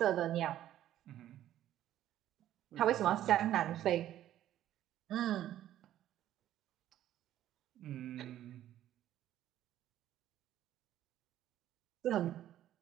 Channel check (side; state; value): left; quieter; 12.4 dB